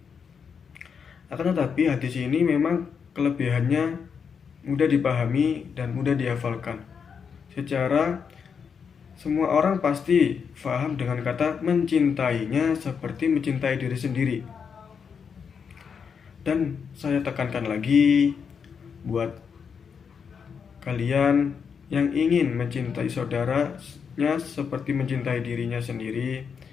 Akan tetapi hadis ini memang kelebihannya mudah dipahami dan mudah dihafalkan. Secara semua orang pasti paham dengan kata mencintainya seperti mencintai diri sendiri. Dan saya tekankan lagi buat kalian yang ingin mencintai saudaranya seperti mencintai dirinya sendiri,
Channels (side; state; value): right; quieter; 6.5 dB